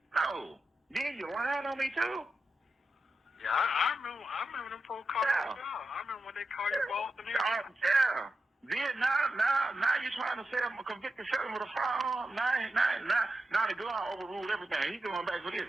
no. Then you lying on me too? Yeah, I remember them folks calling you out. I remember when they called you both and everything. Yeah. Then now you're trying to say I'm a convicted felon with a firearm. Now the gun overruled everything. He's going back for this.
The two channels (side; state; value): both; normal; correlation 0.89